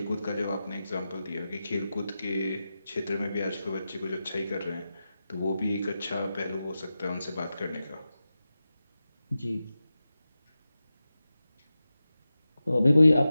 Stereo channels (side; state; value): both; inverted; correlation -0.93